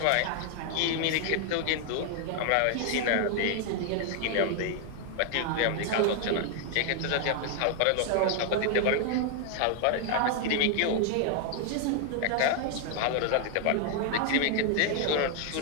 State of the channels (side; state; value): both; different; correlation 0.00